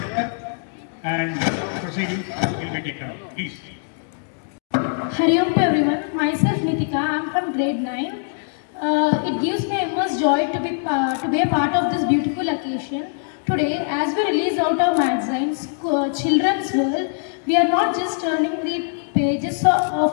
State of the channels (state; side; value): silent; right; digital silence